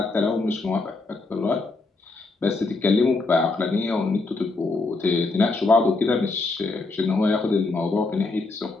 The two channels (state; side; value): quieter; right; 3.5 dB